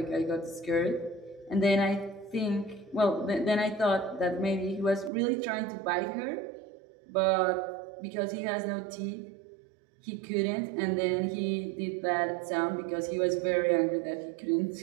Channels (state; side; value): drops out; left; at 5.1 s